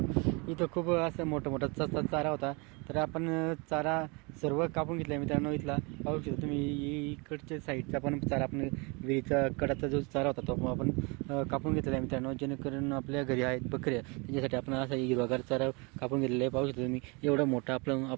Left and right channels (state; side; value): quieter; left; 29.8 dB